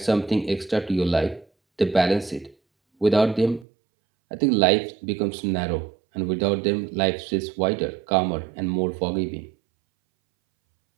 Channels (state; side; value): drops out; left; at 3.7 s